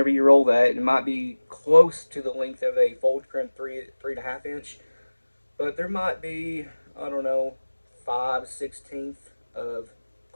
you roll that. It might be close to the length of a fold crimp 3.5 inch. But there might be, I don't know, 5/16 of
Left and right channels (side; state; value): both; inverted; correlation -1.00